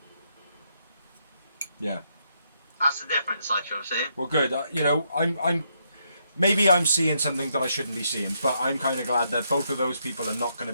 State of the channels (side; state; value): both; inverted; correlation -0.77